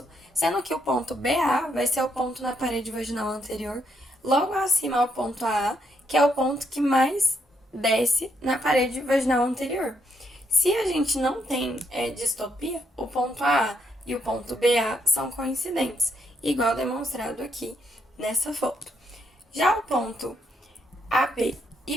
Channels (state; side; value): normal; both; correlation 0.76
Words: sendo que o ponto BA vai ser o ponto na parede vaginal anterior, logo acima ao ponto AA, que é o ponto que mais desce na parede vaginal anterior. Se a gente não tem distopia, o ponto AA e o ponto BA são coincidentes, igual demonstrado aqui nessa foto. Já o ponto AP